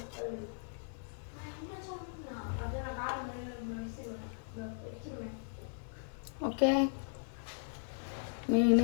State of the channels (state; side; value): silent; right; 53 dB below the other